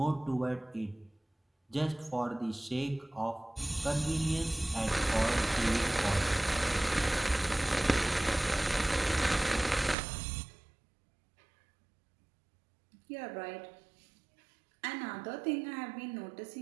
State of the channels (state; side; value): drops out; left; at 10.0 s